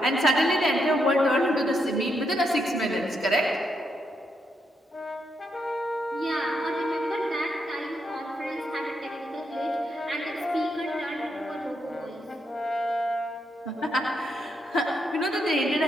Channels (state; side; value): normal; both; correlation 0.79